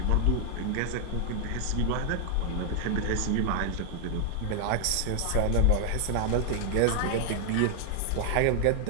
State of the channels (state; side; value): different; both; correlation 0.00